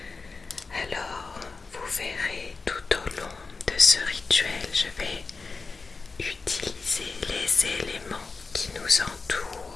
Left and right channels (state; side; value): quieter; right; 4.2 dB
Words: Alors, vous verrez tout au long de ce rituel, je vais utiliser les éléments qui nous